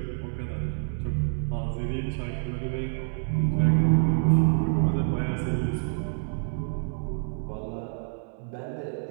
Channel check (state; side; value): silent; left; 60 dB below the other